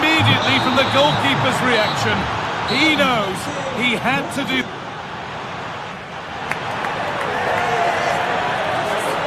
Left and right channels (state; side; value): identical; both; correlation 1.00